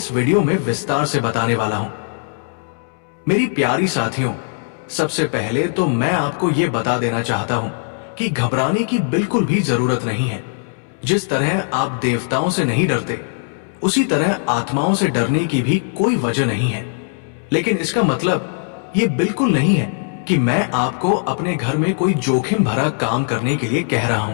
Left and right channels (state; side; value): silent; right; 66 dB below the other